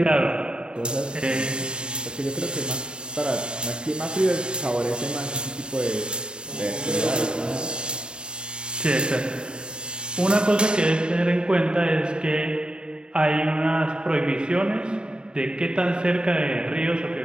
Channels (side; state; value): left; late; 0.050 ms